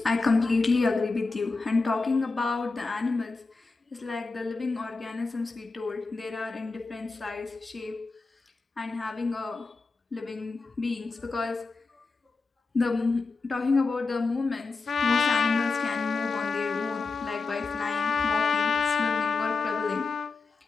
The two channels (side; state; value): right; quieter; 4.1 dB